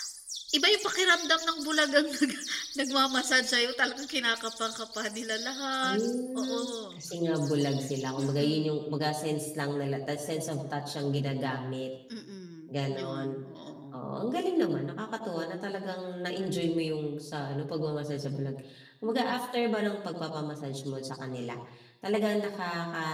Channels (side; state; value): both; identical; correlation 1.00